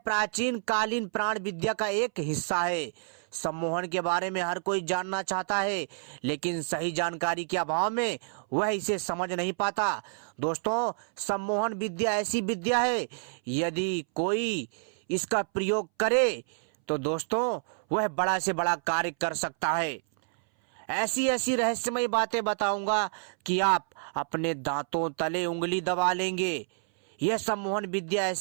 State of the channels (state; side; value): silent; left; 59 dB below the other